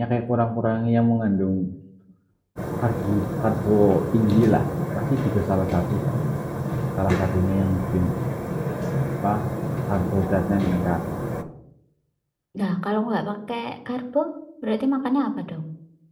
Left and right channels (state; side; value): identical; both; correlation 1.00